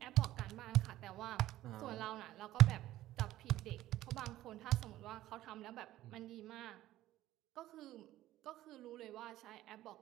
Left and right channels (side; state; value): left; quieter; 14.8 dB